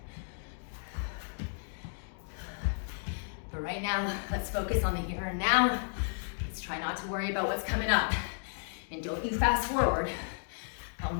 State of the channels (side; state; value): right; silent; digital silence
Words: But right now, let's focus on the here and now. Let's try not to worry about what's coming up. And don't you fast forward. Oh